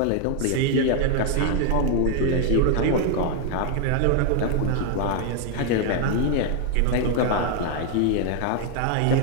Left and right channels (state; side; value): different; both; correlation 0.01